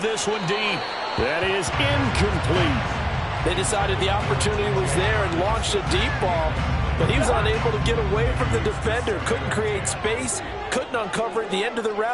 this one deep. That is incomplete. They decided the opportunity was there and launched a deep ball, but he was unable to get away from the defender. Couldn't create space, couldn't uncover at the end of the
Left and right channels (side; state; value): both; identical; correlation 1.00